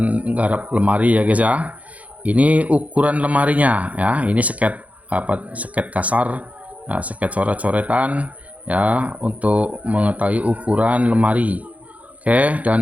garap lemari ya guys ya. Ini ukuran lemarinya ya. Ini sket kasar, ya, sket coret-coretan ya untuk mengetahui ukuran lemari. Oke,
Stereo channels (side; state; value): left; late; 0.068 ms